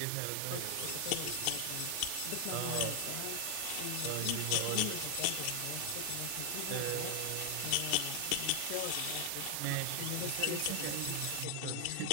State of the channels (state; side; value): different; both; correlation 0.00